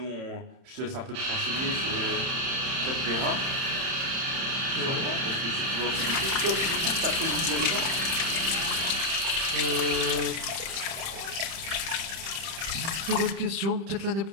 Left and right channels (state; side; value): late; left; 31 ms